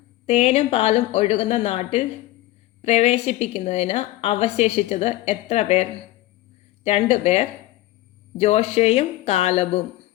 തേനും പാലും ഒഴുകുന്ന നാട്ടിൽ പ്രവേശിപ്പിക്കുന്നതിന് അവശേഷിച്ചത് എത്ര പേർ? 2 പേർ, ജോഷയും കാലബും.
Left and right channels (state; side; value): quieter; right; 16.7 dB